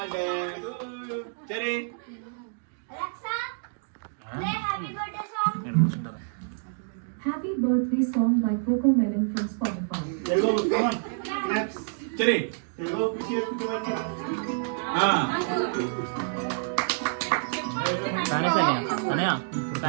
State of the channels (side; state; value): left; silent; digital silence